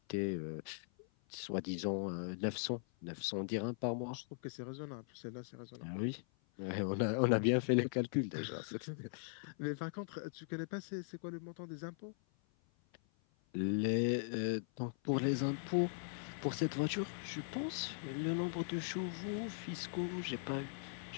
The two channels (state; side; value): silent; right; 51 dB below the other